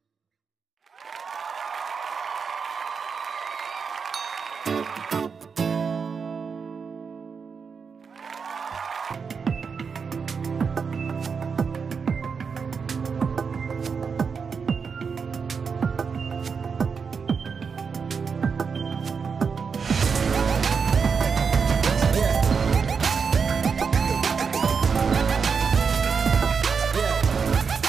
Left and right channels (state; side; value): quieter; left; 5.8 dB